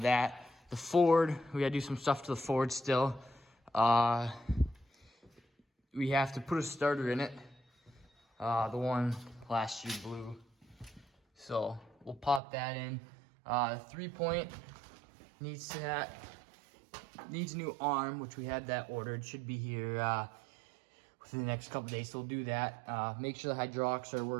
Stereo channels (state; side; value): drops out; left; at 12.4 s